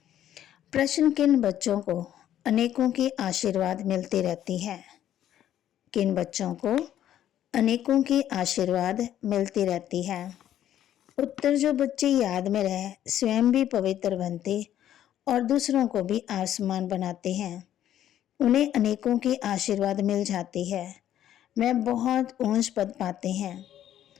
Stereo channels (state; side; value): quieter; right; 11.4 dB